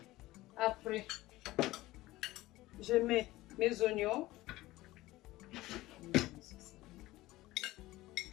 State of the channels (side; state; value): right; quieter; 17.8 dB